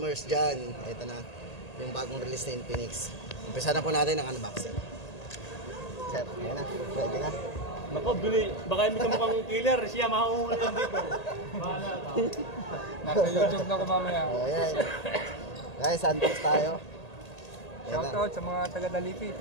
dyan. Ito na, yung bagong release na Infinix. Umpisa na po natin ang unboxing. Sir, yan na, ready na. Nako, baka hindi ka mukhang killer, siya mahuhuli yan dito. Bahala ka. Nasa YouTube na ko mamaya. Ayan. Guys, unbox tayo. Shoutout sa mga taga-Dalipit.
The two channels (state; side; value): late; right; 1.8 ms